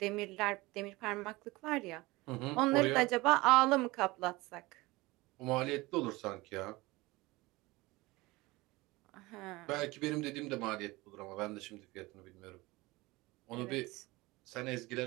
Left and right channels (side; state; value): left; quieter; 21.6 dB